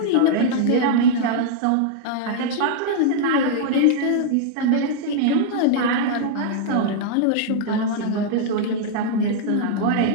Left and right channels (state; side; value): different; both; correlation -0.01